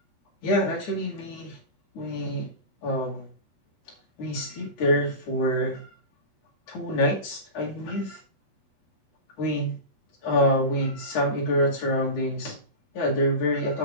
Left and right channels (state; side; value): late; right; 8.0 ms